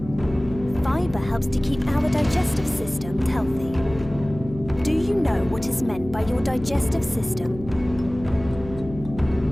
Fibre helps to keep our digestive system healthy. Do you know what is meant by your digestive system?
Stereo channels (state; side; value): noise; left; hum, 14 dB below the sound